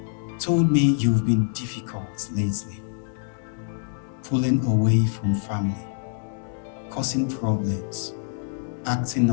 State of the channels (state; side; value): silent; right; digital silence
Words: "Told me you've been difficult lately. pulling away from family, causing problems, acting